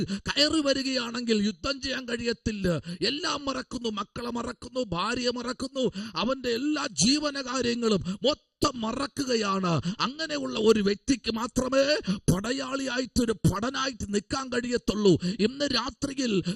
കയറി വരികയാണെങ്കിൽ യുദ്ധം ചെയ്യാൻ കഴിയത്തില്ല. എല്ലാം മറക്കുന്നു. മക്കളെ മറക്കുന്നു, ഭാര്യയെ മറക്കുന്നു, അവന്റെ എല്ലാ ജീവനകാര്യങ്ങളും മറക്കുകയാണ്. അങ്ങനെയുള്ള ഒരു വ്യക്തിക്ക് മാത്രമേ പടയാളിയായിട്ട്, ഒരു പടനായിട്ട് നിൽക്കാൻ കഴിയത്തുള്ളൂ. ഇന്ന് രാത്രിയിൽ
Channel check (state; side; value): identical; both; correlation 1.00